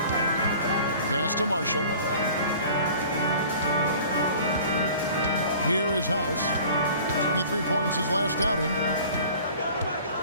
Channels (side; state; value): both; inverted; correlation -0.46